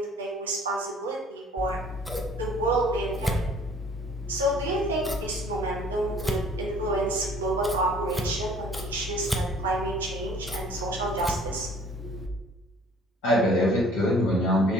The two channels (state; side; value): normal; both; correlation 0.53